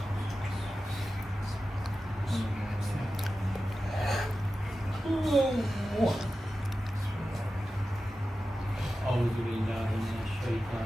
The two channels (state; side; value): normal; both; correlation 0.93